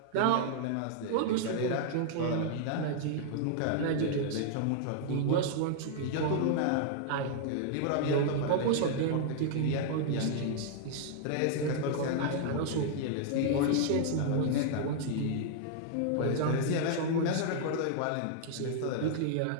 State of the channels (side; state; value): both; different; correlation -0.01